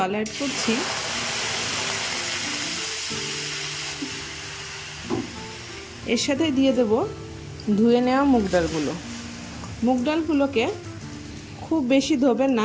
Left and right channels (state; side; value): identical; both; correlation 1.00